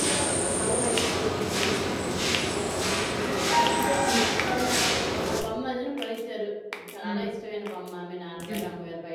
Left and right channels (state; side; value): identical; both; correlation 1.00